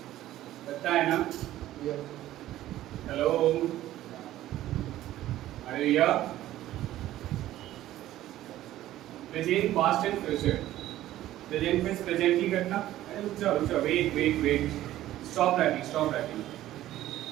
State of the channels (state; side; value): quieter; left; 14.1 dB